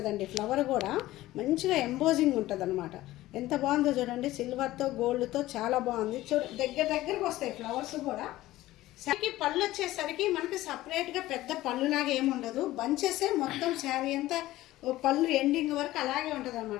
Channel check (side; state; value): right; quieter; 16.3 dB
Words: ఫ్లవర్ కూడా మంచిగా ఎంబోజింగ్ ఉంటుంది అనమాట. ఎంత బాగుందో చూడండి. సిల్వర్తో గోల్డ్తో చాలా బాగుంది. దగ్గరకు వస్తాయి ఫ్లవర్స్ కూడా. శారీకి పళ్ళు వచ్చేసరికి మనకి సపరేట్గా పెద్ద పళ్ళులాగా ఏముండదు, బంచెసే మొత్తం శారీ అంతా పళ్ళు ఎండింగ్ వరకు అలాగే ఉంటుంది